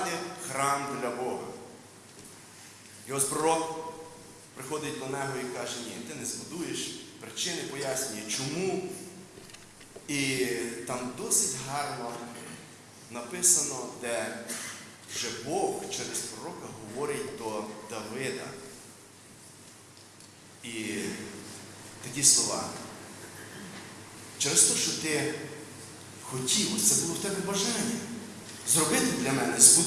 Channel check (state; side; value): identical; both; correlation 1.00